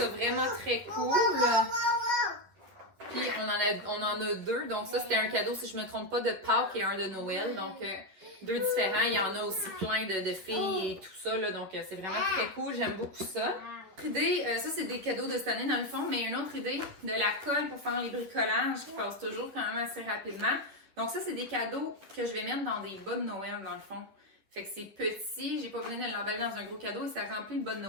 vraiment très cool. Puis, on en a 2. Donc, ça, c'était un cadeau, si je ne me trompe pas, de Pâques et un de Noël. Donc, 2 différents. Il y en a aussi plein de filles et tout ça. Là, donc, c'est vraiment très cool. J'aime beaucoup ça. Autre idée, ça, c'est des cadeaux de cette année, dans le fond. Mais une autre idée, de la colle pour faire les bricolages qui passe toujours quand même assez rapidement. Donc, ça, c'est des cadeaux que je vais mettre dans des bas de Noël, dans le fond. Fait que c'est petit. J'ai pas besoin de l'emballer dans un gros cadeau et ça remplit le bas de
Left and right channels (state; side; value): late; left; 11 ms